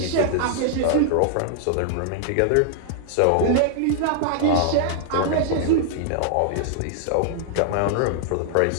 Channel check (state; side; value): different; both; correlation -0.01